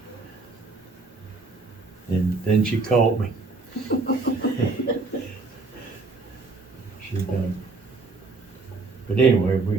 And then she caught me. She done. But anyway,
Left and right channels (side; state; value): left; quieter; 3.8 dB